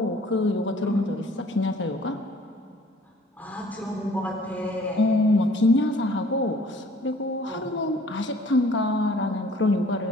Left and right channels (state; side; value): normal; both; correlation 0.54